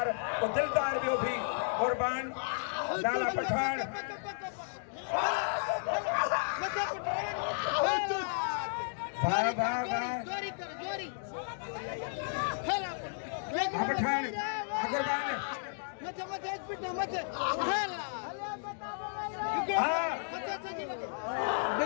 वो दिलदार भी भी कुर्बान लाला पठान जोरी पठान कुर्बान मत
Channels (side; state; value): right; silent; digital silence